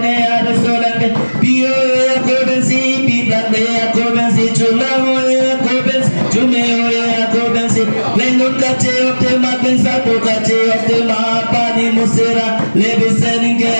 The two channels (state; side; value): inverted; both; correlation -1.00